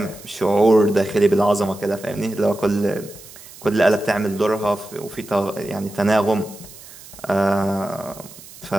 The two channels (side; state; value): right; noise; hiss, 19 dB below the sound